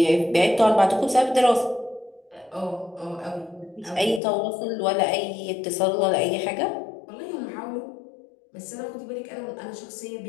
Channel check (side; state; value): right; drops out; at 4.2 s